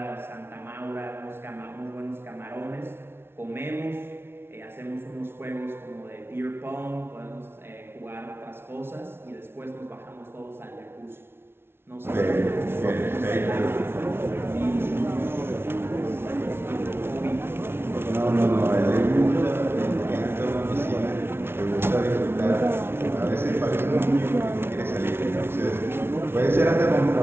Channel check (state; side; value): late; left; 0.12 ms